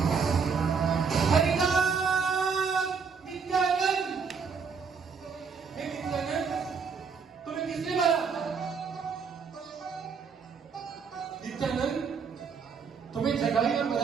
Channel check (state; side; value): quieter; left; 5.8 dB